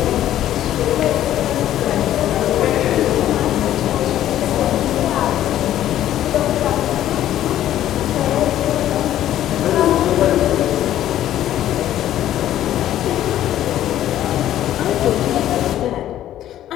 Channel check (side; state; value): right; quieter; 12.4 dB